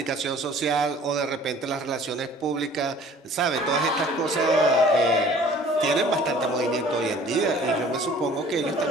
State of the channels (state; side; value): normal; both; correlation 0.51